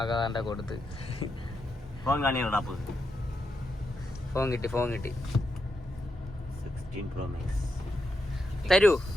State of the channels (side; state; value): both; normal; correlation 0.84